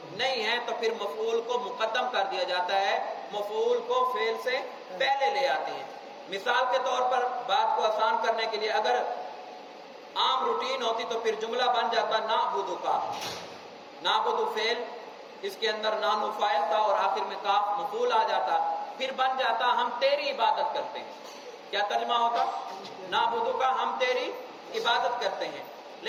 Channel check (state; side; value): identical; both; correlation 1.00